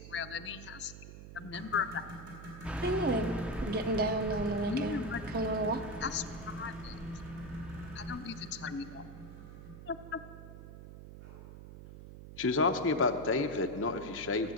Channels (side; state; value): right; noise; hum, 13 dB below the sound